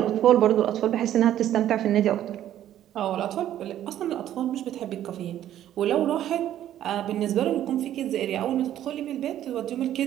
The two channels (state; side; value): quieter; left; 11.8 dB